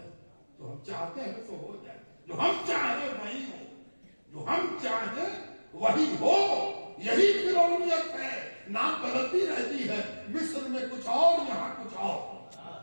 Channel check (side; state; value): both; inverted; correlation -1.00